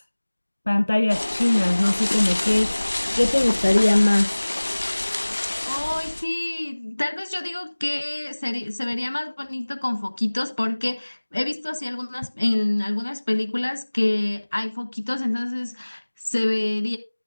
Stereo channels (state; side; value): inverted; both; correlation -1.00